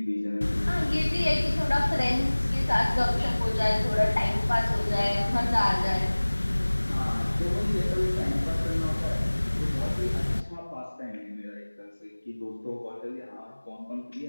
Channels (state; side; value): inverted; both; correlation -1.00